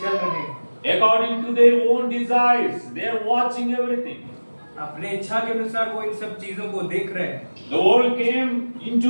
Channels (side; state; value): both; inverted; correlation -1.00